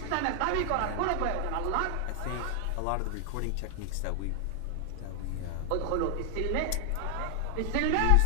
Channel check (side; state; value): both; different; correlation 0.00